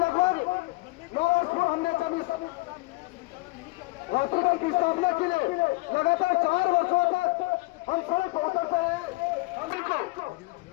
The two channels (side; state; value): right; quieter; 23.9 dB